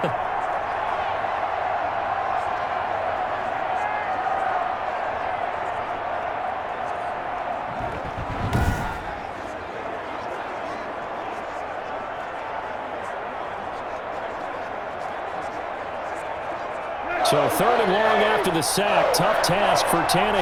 So 3rd and long after the sack. Tough task for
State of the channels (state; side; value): identical; both; correlation 1.00